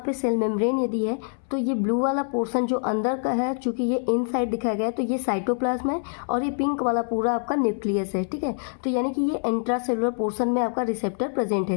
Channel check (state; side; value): silent; right; 62 dB below the other